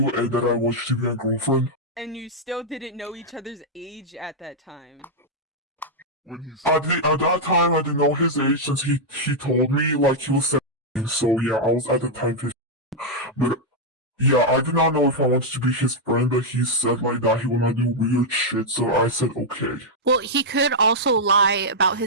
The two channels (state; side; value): normal; both; correlation -0.04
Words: and that I want you to be my girlfriend? And you still didn't know each other's age at that time. At that time, I didn't know his age since he told me like he was 17. So yeah, I was at the time 15. But yeah, I did not know if I wanted to be his friend, but he said like that he would not do weird shit. So I said okay. Well, he could also lie about